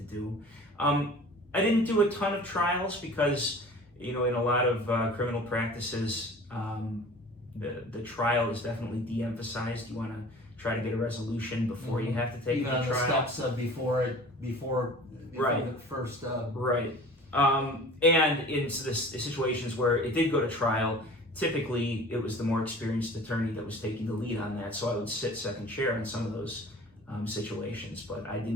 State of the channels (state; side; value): normal; both; correlation 0.43